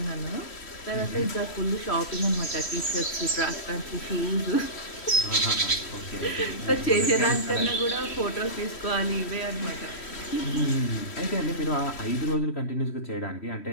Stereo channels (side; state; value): right; late; 3.1 ms